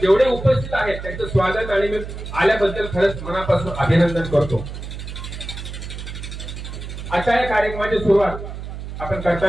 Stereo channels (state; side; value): noise; right; hum, 9 dB below the sound